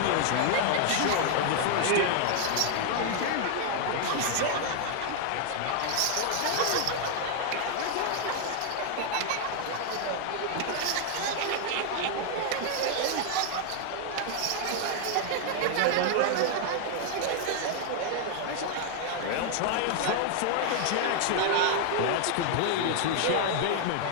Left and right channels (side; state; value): both; different; correlation 0.00